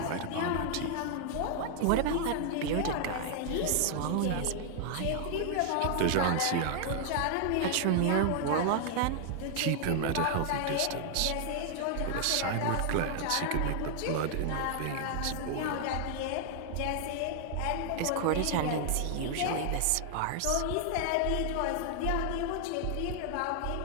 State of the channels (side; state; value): both; different; correlation 0.00